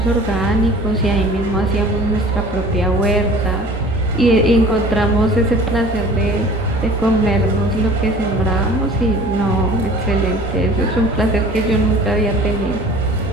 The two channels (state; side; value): normal; both; correlation 0.46